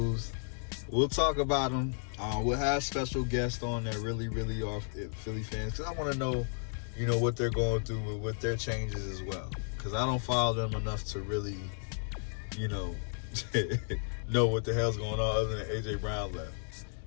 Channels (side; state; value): right; silent; digital silence